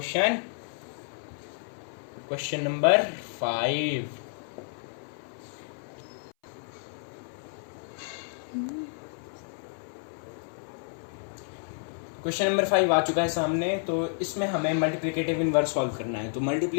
Question number 5। Question number 5 आ चुका है सामने। तो इसमें हमें मल्टीप्लिकेटिव इनवर्स सॉल्व करना है। तो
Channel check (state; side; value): silent; right; 58 dB below the other